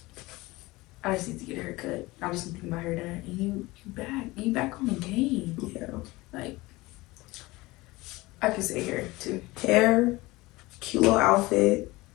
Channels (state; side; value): quieter; right; 20.9 dB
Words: I just need to get a haircut. I just need to get my hair done. And you back on the game. Yeah. Like, I could say hair, too. Hair, cute little outfit.